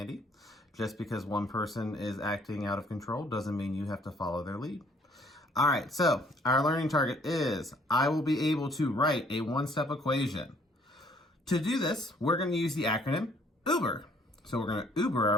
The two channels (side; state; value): both; normal; correlation 0.61